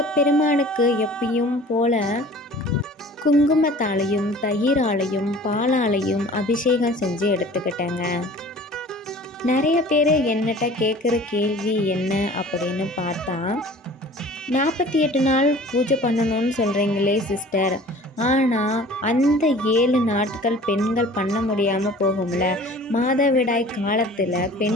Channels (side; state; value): both; normal; correlation 0.45